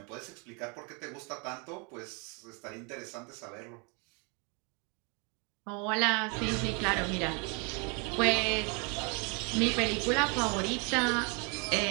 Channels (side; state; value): left; quieter; 33.2 dB